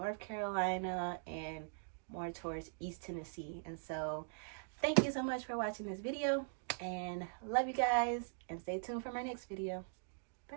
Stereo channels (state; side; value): silent; left; digital silence